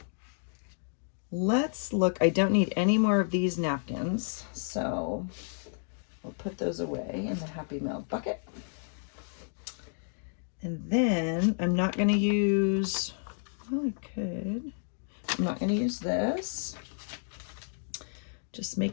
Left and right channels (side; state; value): right; silent; digital silence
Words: Let's look. I don't need any more of these napkins, so we'll put those away in the Happy Mail bucket. And then I'm not going to use, well, I could. I'm not going to use this. Just